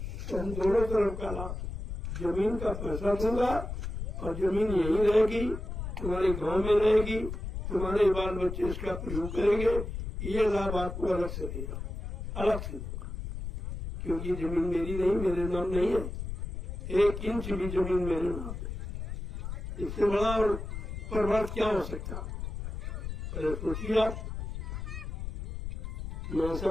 तो हम दोनों तरफ का लाभ, जमीन का पैसा दूंगा और जमीन यही रहेगी, तुम्हारे गांव में रहेगी, तुम्हारे बाल बच्चे इसका प्रयोग करेंगे। ये लाभ आपको अलग से देगा, अलग से दूंगा, क्योंकि जमीन मेरी नहीं, मेरे नाम नहीं है। 1 इंच भी जमीन मेरे नाम है। इससे बड़ा और परमार्थ क्या हो सकता। अरे सोचिए आप, मैं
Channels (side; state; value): left; noise; rumble, 6 dB below the sound